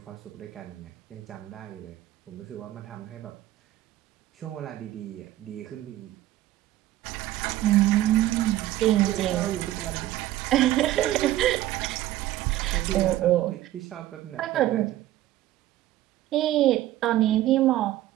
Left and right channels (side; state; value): left; quieter; 14.7 dB